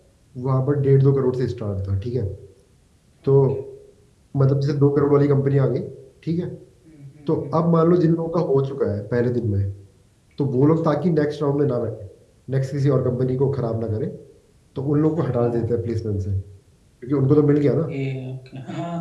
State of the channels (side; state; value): both; identical; correlation 1.00